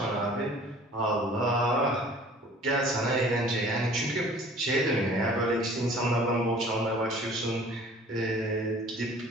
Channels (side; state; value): both; normal; correlation 0.49